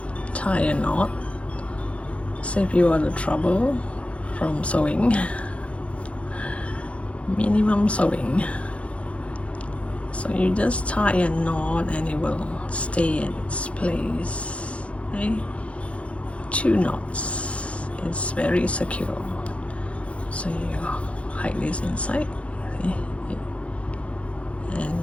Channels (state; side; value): late; right; 0.062 ms